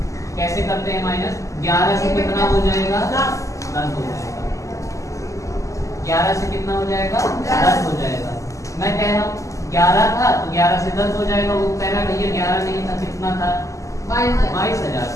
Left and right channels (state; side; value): late; right; 0.16 ms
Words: कैसे करते हैं माइनस, 11 से कितना हो जाएगा, 10 हो जाएगा, 11 से कितना हो जाएगा, 10 हो जाएगा। मैं कह रहा हूँ 11 था तो 11 से 10 हो जाएगा, वो कह रहा भैया 11 नहीं था, कितना था, 22,000